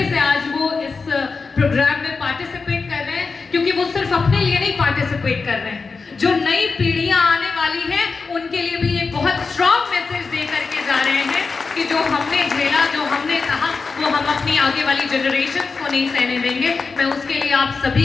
से आज वो इस प्रोग्राम में पार्टिसिपेट कर रहे हैं, क्योंकि वो सिर्फ अपने लिए नहीं पार्टिसिपेट कर रहे हैं, जो नई पीढ़ियां आने वाली हैं उनके लिए भी ये बहुत स्ट्रॉन्ग मैसेज दे करके जा रहे हैं कि जो हमने झेला, जो हमने कहा, वो हम अपनी आगे वाली जनरेशन्स को नहीं सहने देंगे। मैं उसके लिए आप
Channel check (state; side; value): quieter; right; 4.5 dB